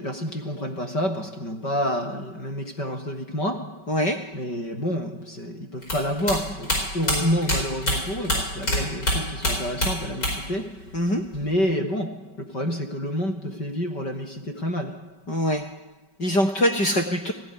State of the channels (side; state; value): right; late; 5.2 ms